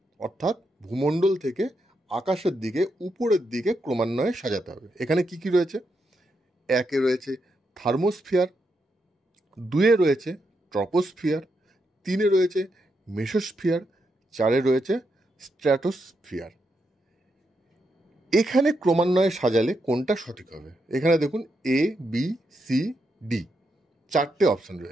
অর্থাৎ ভূমণ্ডল থেকে আকাশের দিকে উপরের দিকে ক্রমান্বয়ে সাজাতে হবে। এখানে কি কি রয়েছে? একে রয়েছে থার্মোস্ফিয়ার, দুয়ে রয়েছে ট্রপোস্ফিয়ার, তিনে রয়েছে মেসোস্ফিয়ার, চারে রয়েছে স্ট্র্যাটোস্ফিয়ার। এখানে ক্রমান্বয়ে সাজালে কোনটা সঠিক হবে? এখানে দেখুন এ, বি, সি, ডি, চারটে অপশন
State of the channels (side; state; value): both; normal; correlation 0.82